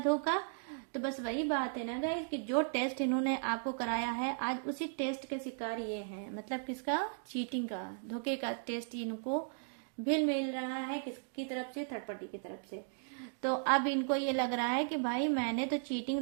तो बस वही बात है ना गाइस कि जो टेस्ट इन्होंने आपको कराया है, आज उसी टेस्ट के शिकार ये हैं। मतलब किसका? चीटिंग का, धोखे का टेस्ट इनको भी मिल रहा है। किसकी तरफ से? थर्ड पार्टी की तरफ से। तो अब इनको ये लग रहा है कि भाई मैंने तो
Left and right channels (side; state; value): left; silent; digital silence